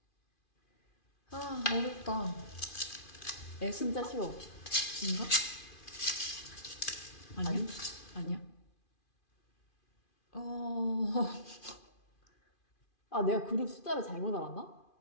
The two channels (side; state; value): right; late; 2.4 ms